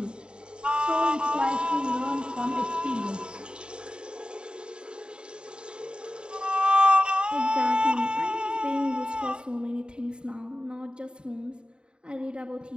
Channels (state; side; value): late; left; 0.051 ms